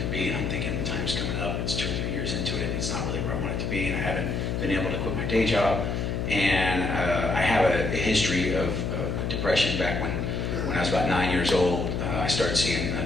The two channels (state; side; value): noise; left; hum, 1 dB below the sound